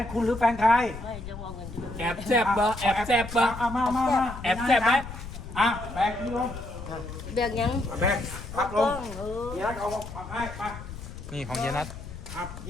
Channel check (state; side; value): noise; left; rumble, 11 dB below the sound